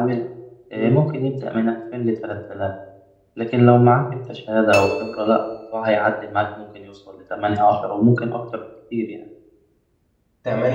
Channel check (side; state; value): both; identical; correlation 1.00